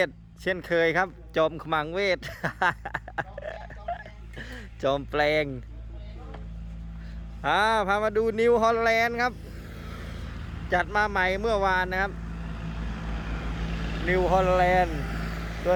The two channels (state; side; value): identical; both; correlation 1.00